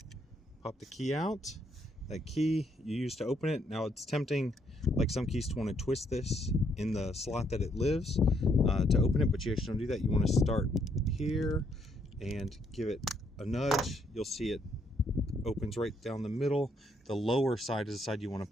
pop the key out. That key you use to open it. Now it's tempting, like some keys, to want to twist this in the slot that it lives to open it, but you actually don't do that. You want to start here and give it a nudge. You'll see it opens right down the middle. The lower side is the side you want to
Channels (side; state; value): both; normal; correlation 0.72